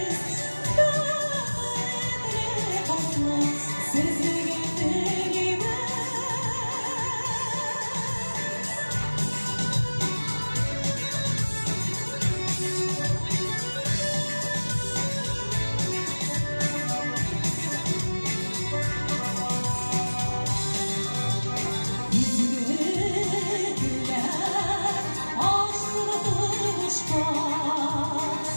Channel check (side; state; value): both; inverted; correlation -1.00